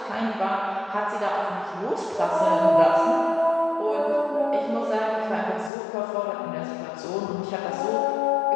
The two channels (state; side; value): drops out; right; at 5.7 s